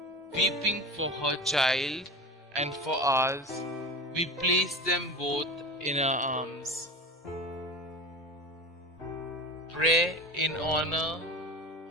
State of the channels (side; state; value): both; normal; correlation 0.30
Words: weeping for her child and for ours. We place them both in our arms. Pray in honor